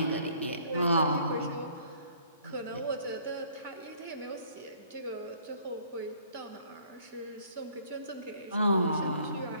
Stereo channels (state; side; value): inverted; both; correlation -0.59